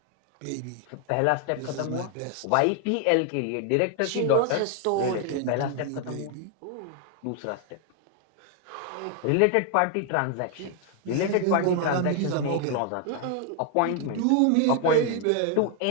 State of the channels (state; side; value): different; both; correlation 0.00